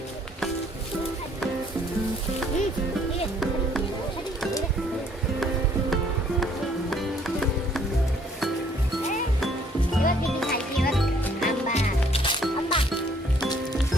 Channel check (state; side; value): normal; both; correlation 0.63